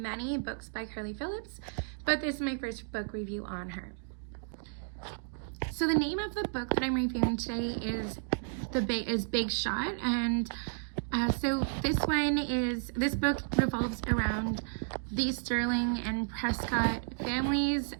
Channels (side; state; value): left; silent; digital silence